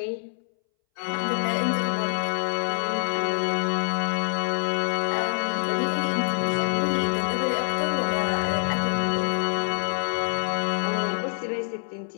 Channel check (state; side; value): silent; right; 61 dB below the other